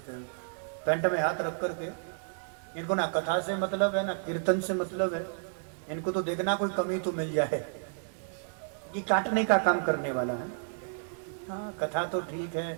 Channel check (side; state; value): left; silent; digital silence